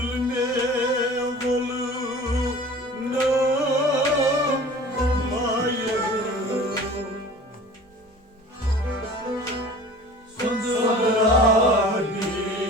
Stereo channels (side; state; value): both; normal; correlation 0.43